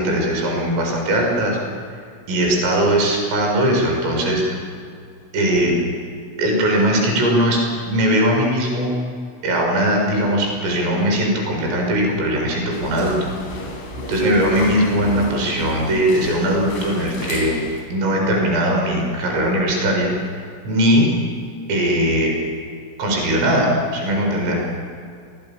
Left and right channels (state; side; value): late; left; 16 ms